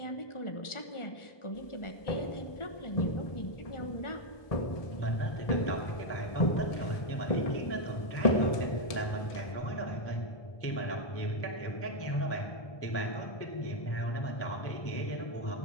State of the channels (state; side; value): late; right; 1.2 ms